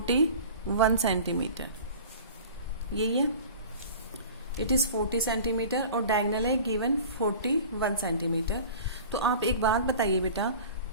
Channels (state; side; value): inverted; both; correlation -0.40